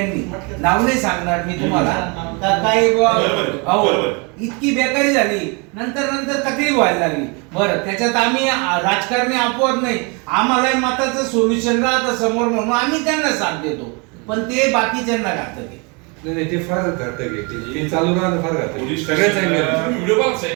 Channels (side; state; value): left; quieter; 31.4 dB